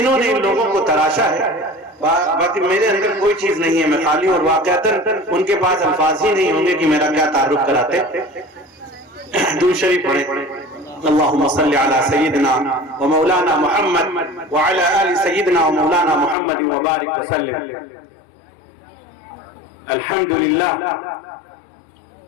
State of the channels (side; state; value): right; drops out; at 16.4 s